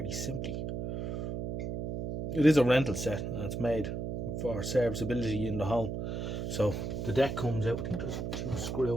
simply. It is a rental set and it's made for serviceability in the home. So the deck comes out. I think there's 2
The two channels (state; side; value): noise; right; hum, 3 dB below the sound